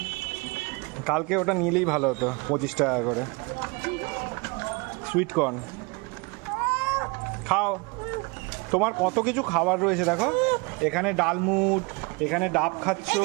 কালকে ওটা নিলেই ভালো হতো, 25 টাকা করে। সুইট কর্ন খাও, তোমার কত কিছু খাবার রয়েছে দেখো। এখানে ডালমুট, এখানে ডাব খাচ্ছ,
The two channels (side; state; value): left; quieter; 28.1 dB